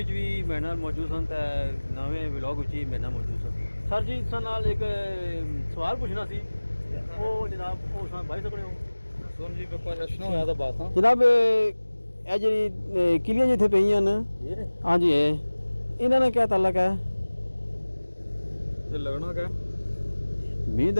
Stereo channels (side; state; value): both; inverted; correlation -1.00